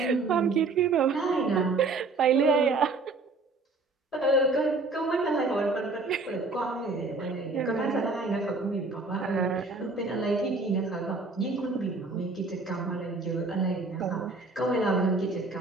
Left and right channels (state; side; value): quieter; left; 3.7 dB